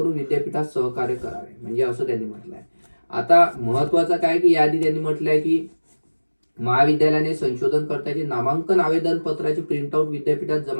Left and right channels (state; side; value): inverted; both; correlation -1.00